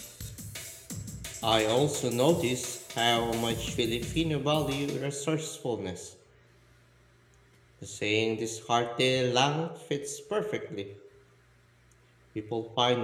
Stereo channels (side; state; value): both; identical; correlation 1.00